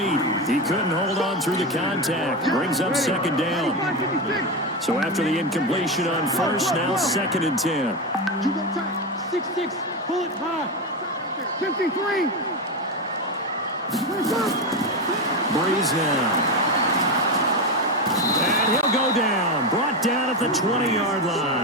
He couldn't hold on through the contact. Brings up 2nd down. So after the incompletion on first, now 2nd and 10. 6-6, pull it high. 53. Breeze now. And he'll go down. Brought down at the 20-yard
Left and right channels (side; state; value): both; normal; correlation 0.15